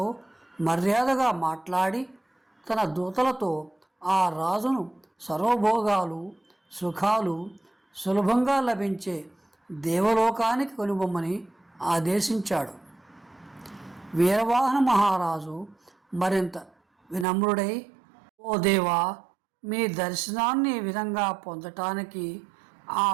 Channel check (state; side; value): drops out; left; at 17.2 s